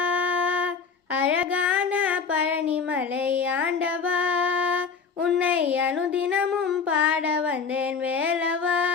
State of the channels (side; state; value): right; quieter; 5.5 dB